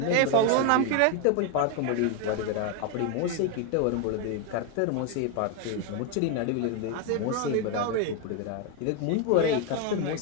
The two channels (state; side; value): different; both; correlation 0.02